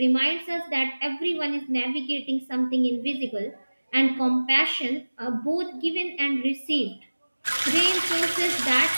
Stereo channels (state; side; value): inverted; both; correlation -1.00